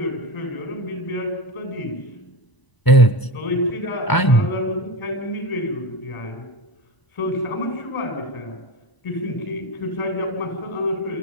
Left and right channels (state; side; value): late; right; 1.0 ms